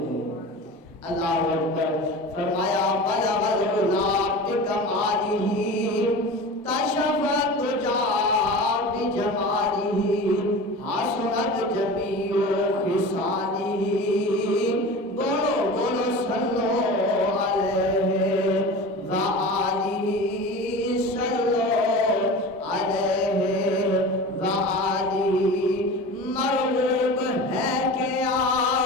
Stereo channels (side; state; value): both; normal; correlation 0.33